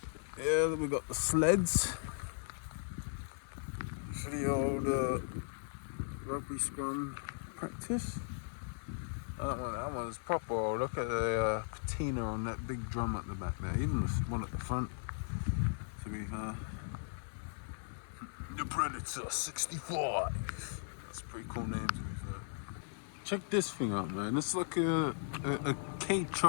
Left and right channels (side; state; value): right; silent; digital silence